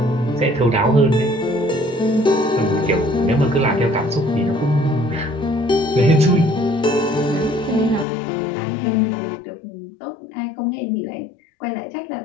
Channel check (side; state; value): right; drops out; at 8.1 s